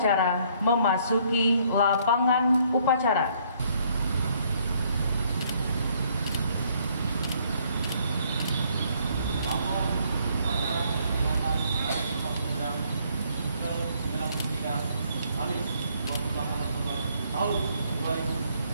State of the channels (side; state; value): both; inverted; correlation -0.66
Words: memasuki lapangan upacara. Tahun